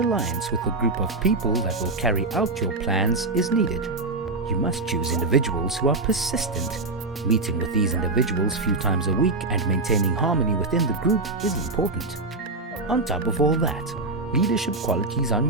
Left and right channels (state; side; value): quieter; left; 3.3 dB